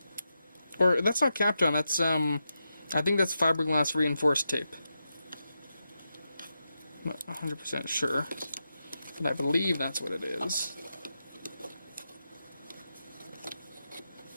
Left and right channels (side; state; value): both; inverted; correlation -0.87